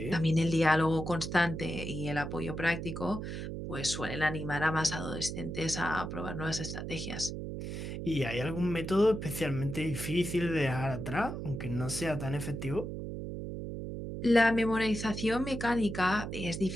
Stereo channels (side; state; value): right; noise; hum, 6 dB below the sound